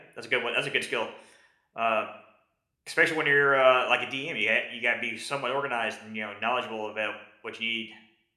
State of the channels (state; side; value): identical; both; correlation 1.00